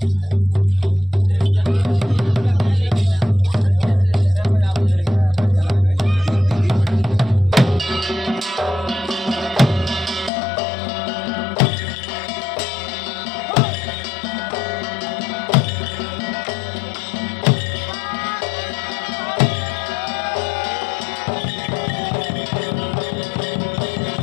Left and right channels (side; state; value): right; drops out; at 10.3 s